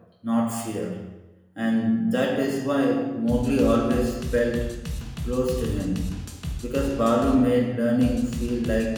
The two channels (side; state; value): both; identical; correlation 1.00